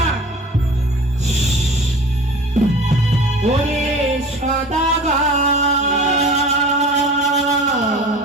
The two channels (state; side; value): normal; both; correlation 0.40